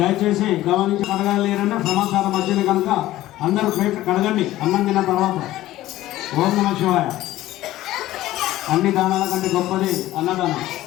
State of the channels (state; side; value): quieter; right; 15.3 dB